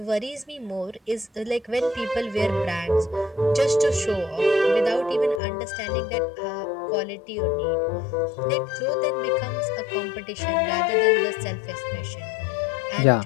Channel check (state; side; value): drops out; right; at 5.4 s